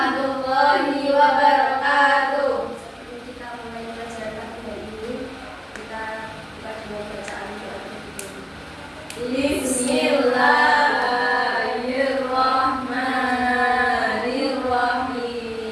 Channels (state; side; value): identical; both; correlation 1.00